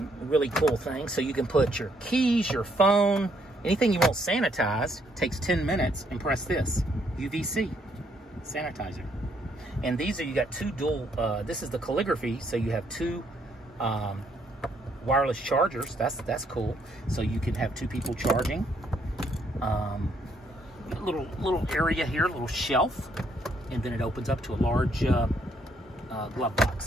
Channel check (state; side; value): normal; both; correlation 0.71